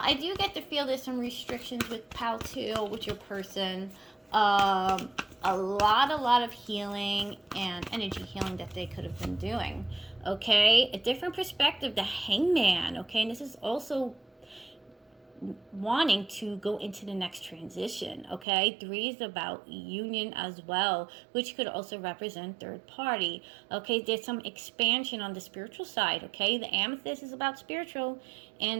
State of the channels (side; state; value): left; drops out; at 18.4 s